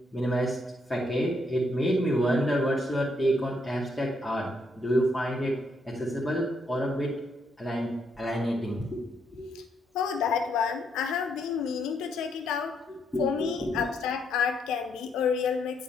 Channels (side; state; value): both; normal; correlation 0.75